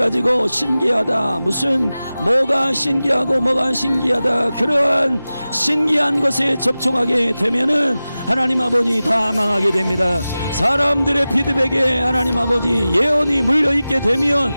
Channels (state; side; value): inverted; both; correlation -0.96